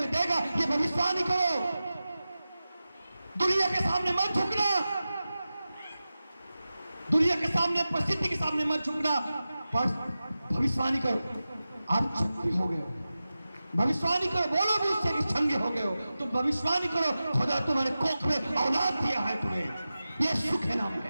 देगा। ये भविष्यवाणी करो, दुनिया के सामने मत झुकना, दुनिया के सामने परिस्थिति के सामने मत झुकना, भविष्यवाणी करो आप चंगे हो गए हो। भविष्यवाणी करो, बोलो भी उससे कि चंगे हो गए हो। तुम भविष्यवाणी करो खुदा तुम्हारे कोख में औलाद दिया है तुम्हें, यीशु के नाम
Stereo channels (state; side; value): inverted; both; correlation -0.94